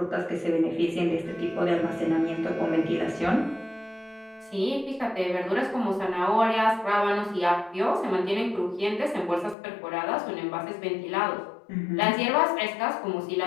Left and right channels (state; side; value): drops out; right; at 9.6 s